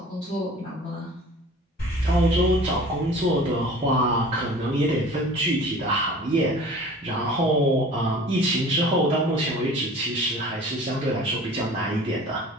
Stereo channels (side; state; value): both; normal; correlation 0.44